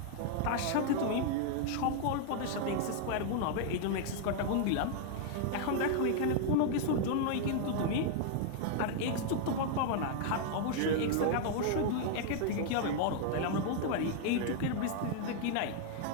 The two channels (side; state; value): both; different; correlation 0.00